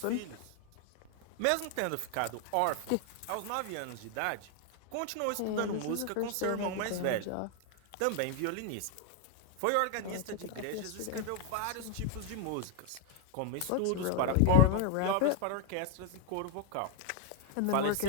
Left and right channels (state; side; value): different; both; correlation 0.01